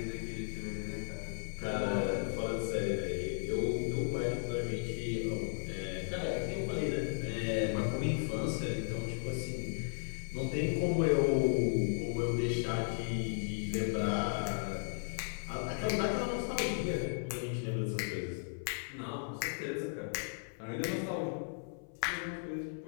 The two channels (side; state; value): right; silent; 54 dB below the other